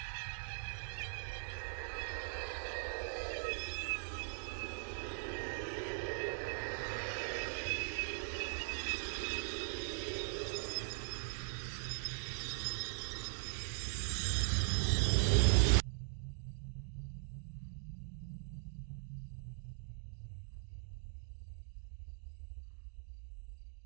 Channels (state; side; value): silent; left; digital silence